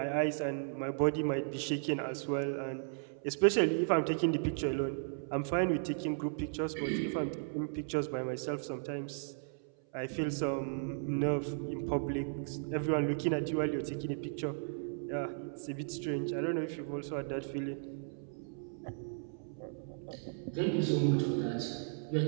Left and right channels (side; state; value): left; silent; 54 dB below the other